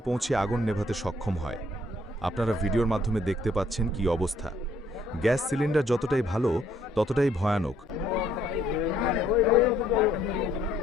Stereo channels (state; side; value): normal; both; correlation 0.66